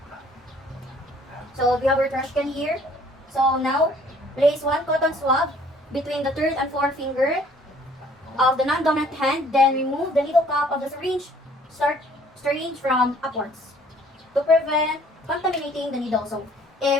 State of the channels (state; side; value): normal; both; correlation 0.57